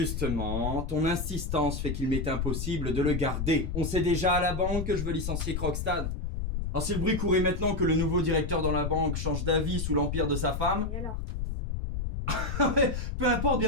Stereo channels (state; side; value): noise; left; rumble, 3 dB below the sound